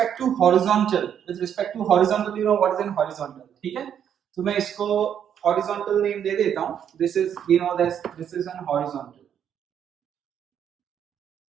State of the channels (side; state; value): left; quieter; 8.9 dB